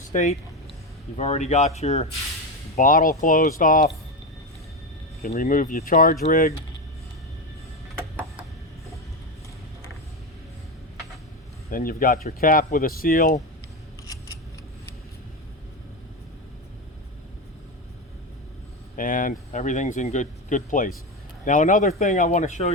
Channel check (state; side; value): normal; both; correlation 0.15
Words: state. You've already got your bottle closed off. You can remove your charge rig. Then you've got your cap with a seal. And everything's in good place. Now another thing I want to show